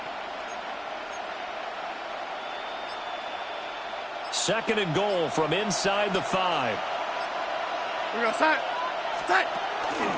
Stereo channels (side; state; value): both; identical; correlation 1.00